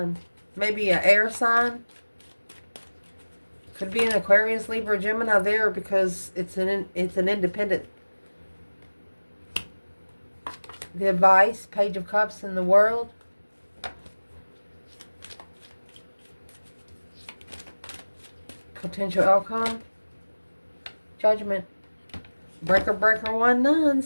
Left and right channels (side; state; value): both; inverted; correlation -1.00